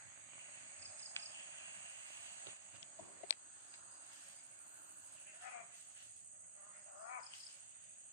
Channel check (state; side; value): inverted; both; correlation -0.34